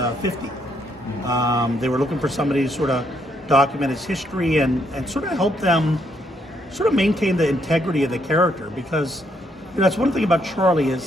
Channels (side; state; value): both; normal; correlation 0.73